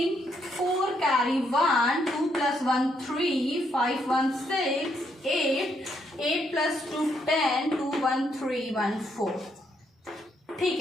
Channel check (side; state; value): both; normal; correlation 0.74